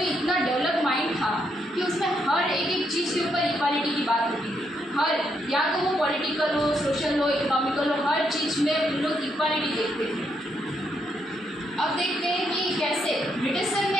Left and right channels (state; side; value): normal; both; correlation 0.77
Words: इतना डेवलप माइंड था कि उसमें हर एक चीज़ के ऊपर इक्वालिटी की बात होती थी। हर, या तो वो पॉलिटिकल हो, सोशल हो, इकोनॉमिकल हो, हर चीज़ में उन लोग इक्वालिटी देखते थे। अब देखते हैं कि कैसे ब्रिटिशर